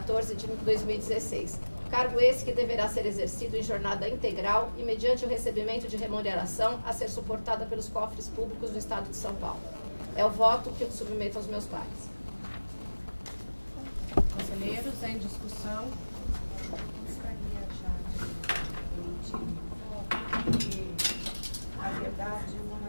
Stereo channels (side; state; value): both; inverted; correlation -1.00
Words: Cargo esse que deverá ser exercido em jornada integral e mediante o recebimento de remuneração a ser suportada pelos cofres públicos do Estado de São Paulo. É o voto que eu submeto aos meus pares. Conselheiros, em discussão. Gostaria já de emitir, na verdade, não